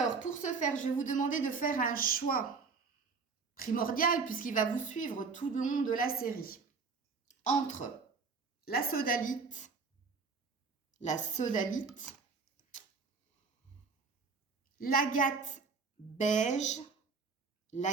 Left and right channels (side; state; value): left; quieter; 4.8 dB